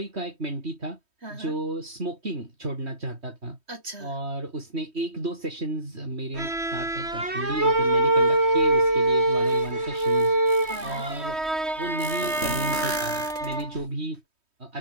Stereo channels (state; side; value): late; left; 3.1 ms